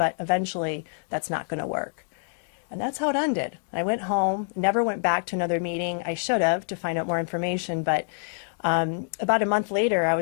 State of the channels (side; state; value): right; silent; digital silence